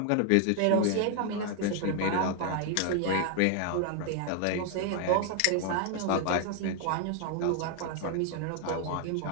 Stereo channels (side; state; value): both; different; correlation 0.00